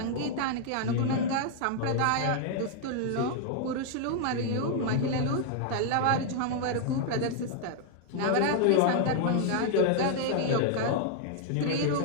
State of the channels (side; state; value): both; different; correlation 0.00